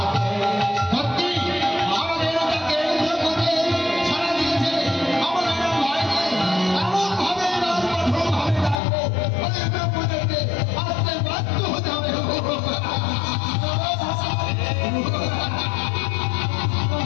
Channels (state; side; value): drops out; right; at 8.8 s